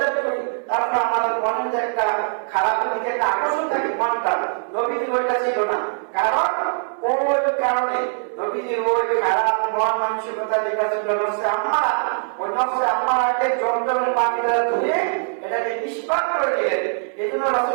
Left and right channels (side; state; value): left; silent; 63 dB below the other